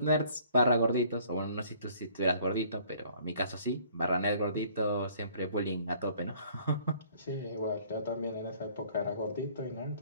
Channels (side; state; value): both; inverted; correlation -0.58